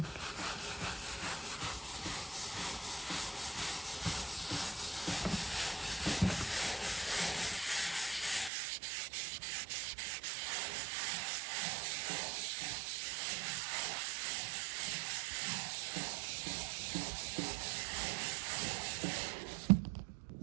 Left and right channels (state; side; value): drops out; left; at 8.5 s